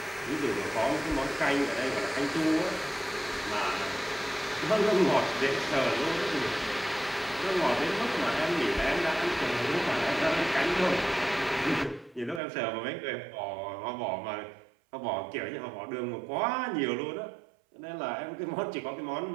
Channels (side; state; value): left; drops out; at 12.4 s